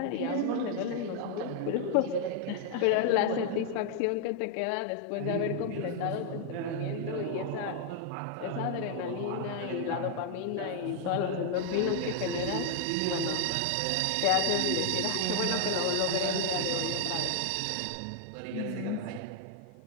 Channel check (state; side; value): different; both; correlation 0.00